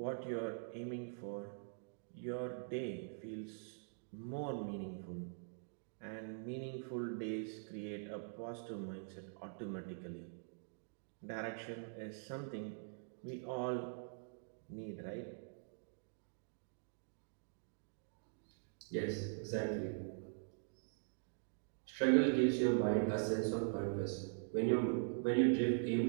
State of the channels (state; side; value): silent; left; digital silence